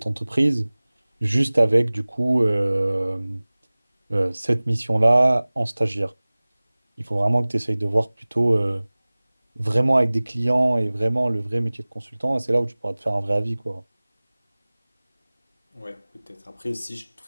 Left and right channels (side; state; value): both; inverted; correlation -1.00